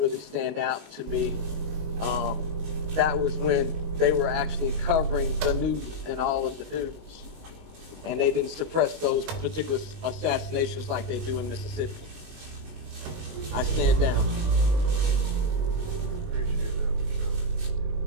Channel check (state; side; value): late; left; 19 ms